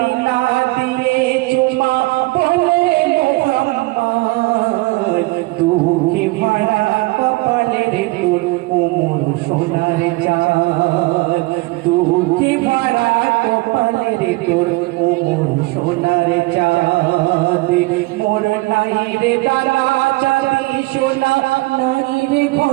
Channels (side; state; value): left; quieter; 22.6 dB